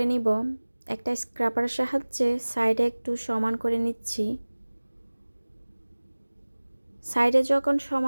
নিব। একটা স্ক্রাবারের সাহায্যে সাইডে একটু সমান করে নিচ্ছি। সাইডে যখন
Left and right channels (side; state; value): both; inverted; correlation -1.00